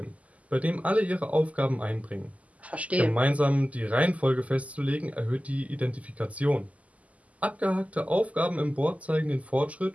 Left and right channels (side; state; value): left; late; 0.071 ms